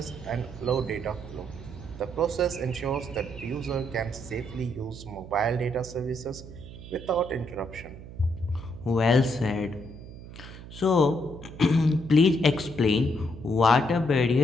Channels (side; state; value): right; noise; hum, 14 dB below the sound